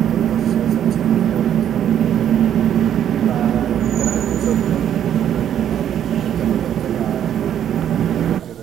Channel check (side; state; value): left; quieter; 10.0 dB